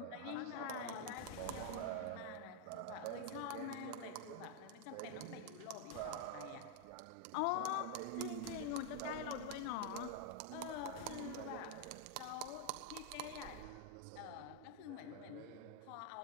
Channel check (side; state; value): both; different; correlation 0.00